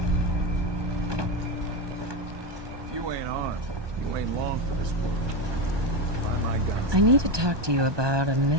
If you ain't armed, you ain't long for this world. Find my guns. I need to talk to you about a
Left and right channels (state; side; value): late; left; 1.2 ms